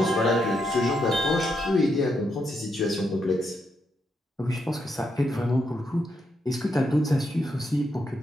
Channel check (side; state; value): both; normal; correlation 0.80